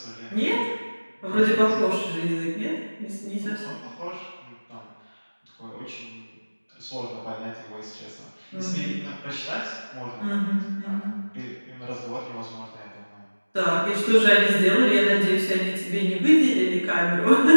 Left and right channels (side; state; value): both; inverted; correlation -1.00